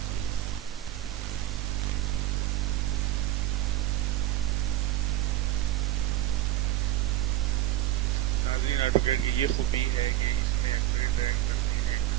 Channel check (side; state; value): left; quieter; 14.6 dB